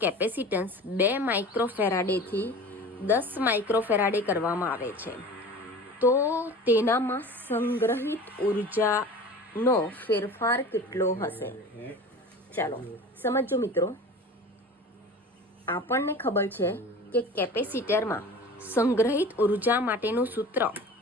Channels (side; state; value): both; normal; correlation 0.38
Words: કેપેસિટન્સ 2 માઇક્રોફેરાડેથી 10 માઇક્રોફેરાડે કરવામાં આવે છે, તો તેનામાં સંગ્રહિત ઉર્જાનો ફેરફાર કેટલો હશે? ચાલો સમજો મિત્રો. આપણને ખબર છે કે કેપેસિટરમાં સંગ્રહિત ઉર્જા માટેનું સૂત્ર,